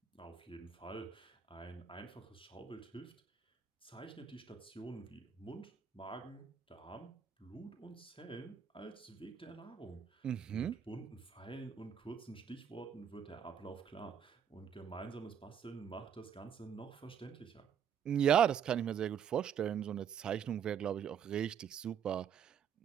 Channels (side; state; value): left; quieter; 8.2 dB